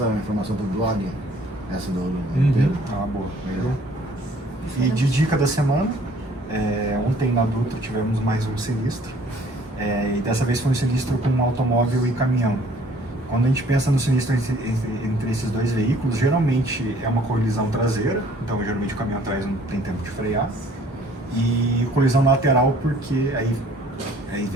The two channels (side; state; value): both; normal; correlation 0.56